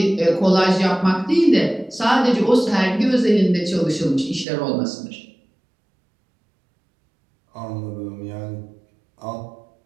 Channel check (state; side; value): drops out; left; at 4.5 s